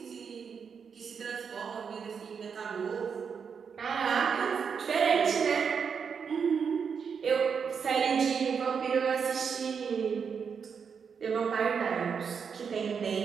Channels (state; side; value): quieter; left; 6.4 dB